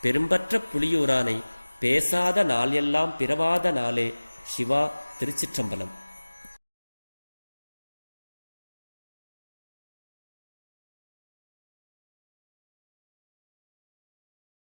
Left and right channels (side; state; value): both; inverted; correlation -1.00